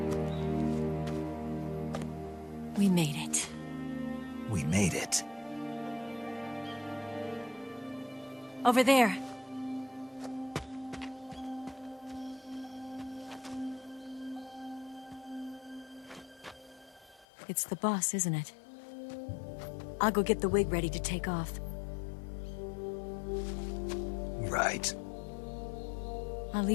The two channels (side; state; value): right; drops out; at 17.2 s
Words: We made it. We made it. Over there. It's the boss, isn't it? I'll go get the wig ready to take off. Right. I'll